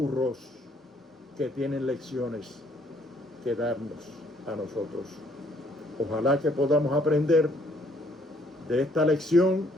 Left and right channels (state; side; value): normal; both; correlation 0.65